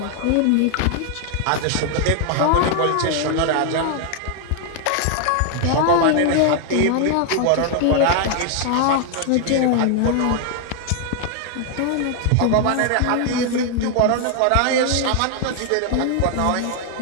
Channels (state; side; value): different; both; correlation 0.00